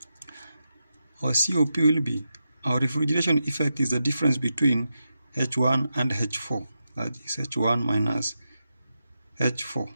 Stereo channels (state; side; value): inverted; both; correlation -0.88